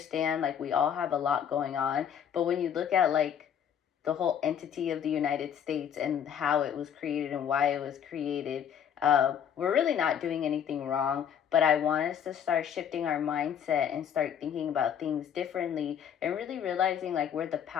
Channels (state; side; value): quieter; right; 8.6 dB